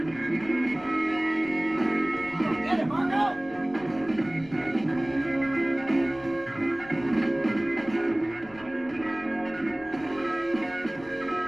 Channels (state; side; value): noise; left; rumble, 22 dB below the sound